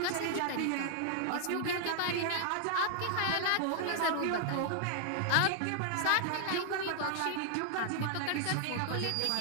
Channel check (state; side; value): different; both; correlation 0.00